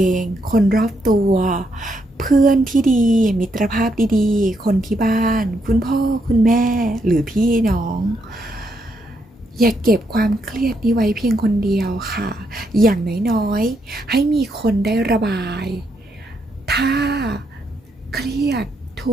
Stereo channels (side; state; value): both; normal; correlation 0.77